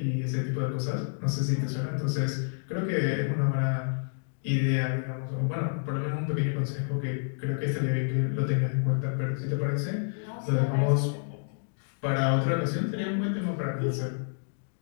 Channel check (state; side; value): silent; right; digital silence